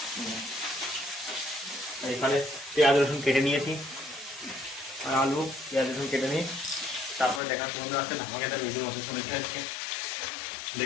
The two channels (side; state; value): right; drops out; at 7.4 s